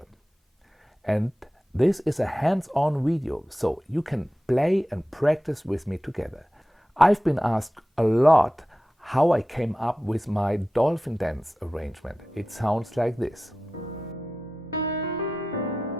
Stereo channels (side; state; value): both; normal; correlation 0.94